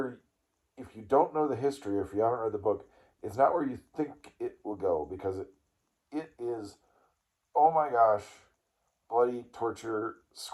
if you don't know the history, or if you haven't read the book, it's not where you think it will go, because it is, oh my gosh, bloody, torture,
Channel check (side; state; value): both; identical; correlation 1.00